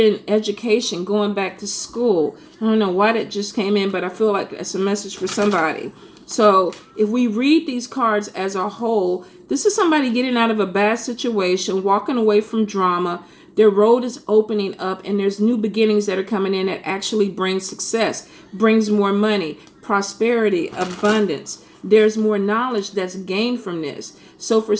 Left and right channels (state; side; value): identical; both; correlation 1.00